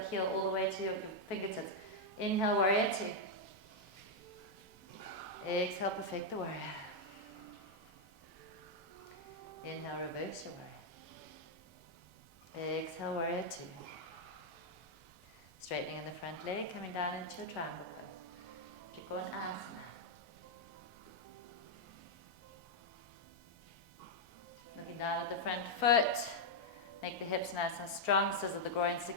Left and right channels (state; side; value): late; left; 1.4 ms